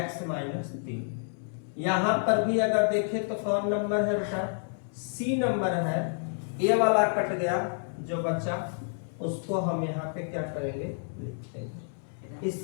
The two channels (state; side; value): silent; right; 58 dB below the other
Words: माइनस 3। यहाँ पर भी अगर देखें तो कौन नंबर है बेटा? c नंबर है। ये वाला कट गया, जो बचा उसको हम यहाँ पे क्या करेंगे? लिख देंगे।